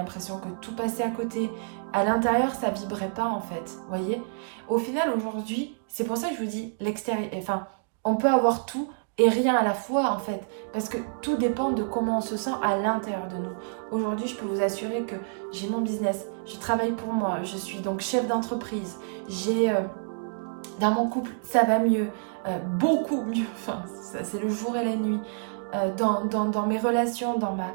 que tout passait à côté. À l'intérieur, ça vibrait pas en fait, vous voyez. Au final, aujourd'hui, c'est pour ça que je vous dis, l'extérieur, on peut avoir tout et rien à la fois en fait, parce que tout dépend de comment on se sent à l'intérieur de nous. Aujourd'hui, je peux vous assurer que j'ai mon business, je travaille pour moi, je suis donc chef d'entreprise, dans mon couple, ça va mieux, beaucoup mieux, c'est le jour et la nuit, dans mes relations, dans ma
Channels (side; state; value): left; silent; digital silence